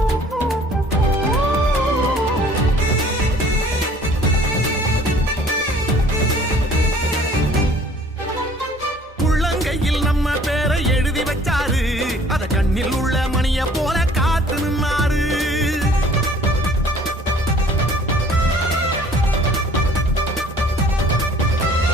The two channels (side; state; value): both; normal; correlation 0.53